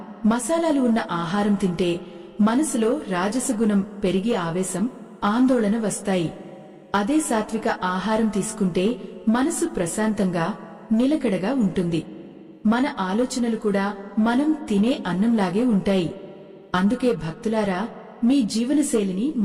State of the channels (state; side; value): identical; both; correlation 1.00